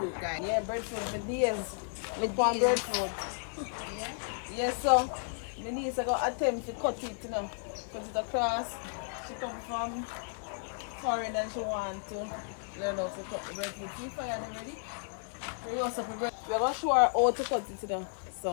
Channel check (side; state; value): right; silent; digital silence